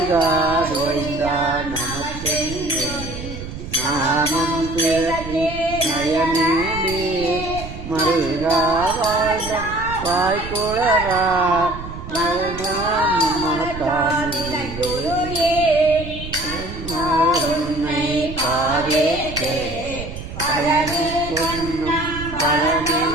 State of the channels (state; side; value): noise; right; rumble, 10 dB below the sound